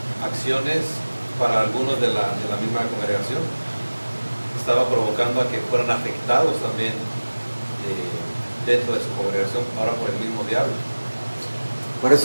acciones para algunos de la misma congregación. Estaba provocando a que fueran afectados también dentro de su congregación, ahora por el mismo diablo. Por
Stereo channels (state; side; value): inverted; both; correlation -1.00